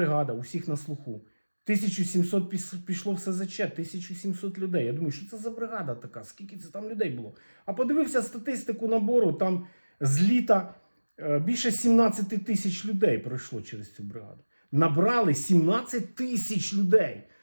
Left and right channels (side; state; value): both; inverted; correlation -1.00